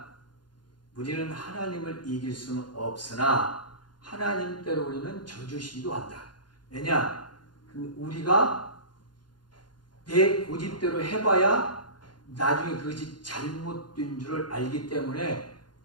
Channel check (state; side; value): late; right; 0.71 ms